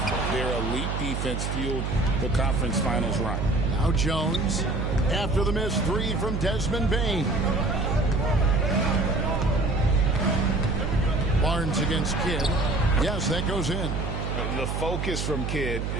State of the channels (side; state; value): right; noise; hum, 3 dB below the sound